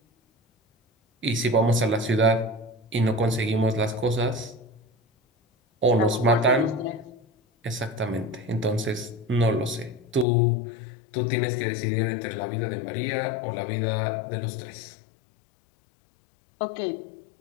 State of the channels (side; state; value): right; drops out; at 10.2 s